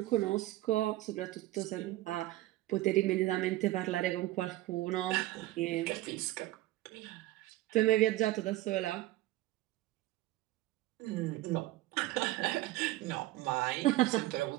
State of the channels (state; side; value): quieter; left; 16.7 dB